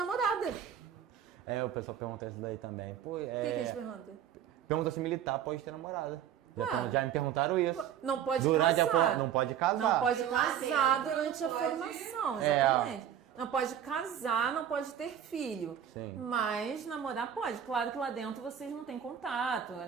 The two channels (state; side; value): quieter; left; 9.5 dB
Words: O pessoal pergunta isso daí também. O que eles perguntam? Pergunta se militar pode ter namorada. Já me perguntaram isso. Não pode casar. Não pode casar. Não pode casar durante a formação, exatamente. Não pode casar, não pode ter filho. Sim. Mas namorar pode. Claro que lá dentro vocês não têm contato,